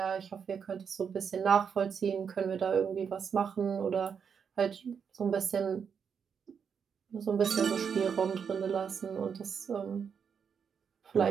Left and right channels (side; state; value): left; quieter; 6.8 dB